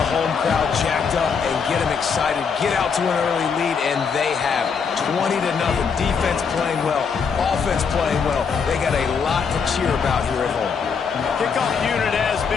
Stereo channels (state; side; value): quieter; right; 6.0 dB